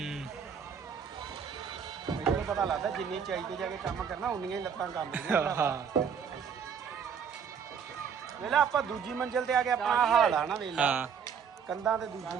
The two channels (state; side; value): quieter; left; 7.1 dB